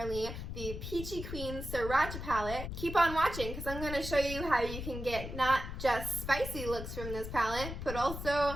the Peachy Queen Sriracha palette, keep on watching because I'm going to show you how you can get not just spicy looks from this palette, but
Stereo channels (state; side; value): noise; left; rumble, 7 dB below the sound